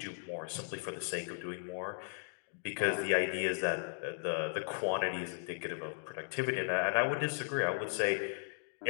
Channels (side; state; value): right; silent; digital silence